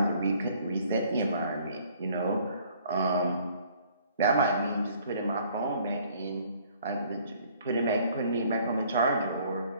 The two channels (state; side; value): inverted; both; correlation -0.59